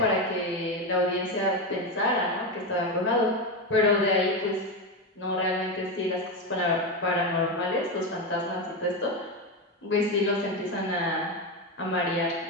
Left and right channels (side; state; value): both; normal; correlation 0.13